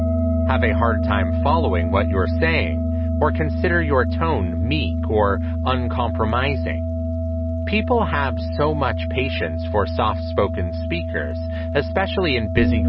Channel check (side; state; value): both; identical; correlation 1.00